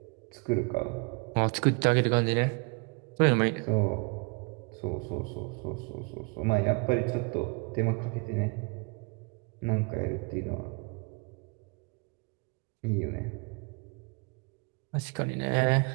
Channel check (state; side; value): quieter; left; 32.3 dB